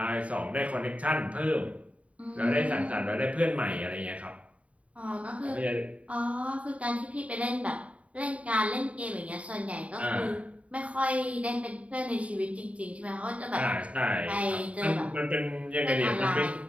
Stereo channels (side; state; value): left; late; 0.066 ms